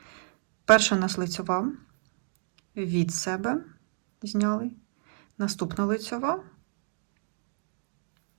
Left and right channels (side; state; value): left; silent; digital silence